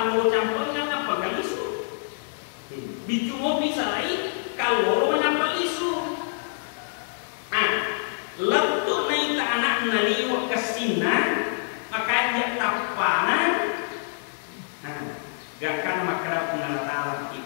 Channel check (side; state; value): right; silent; 56 dB below the other